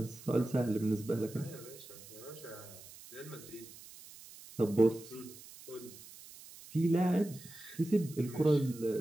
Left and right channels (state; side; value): noise; right; hiss, 18 dB below the sound